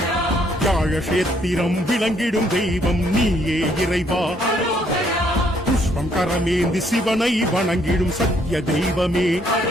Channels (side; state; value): both; normal; correlation 0.68